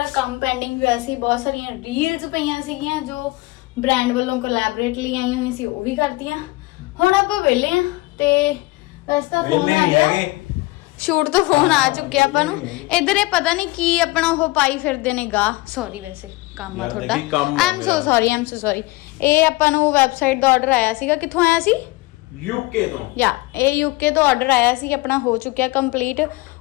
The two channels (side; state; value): right; quieter; 21.7 dB